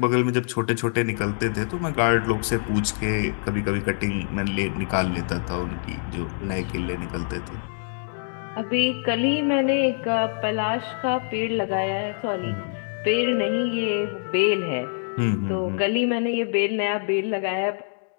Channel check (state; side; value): silent; right; digital silence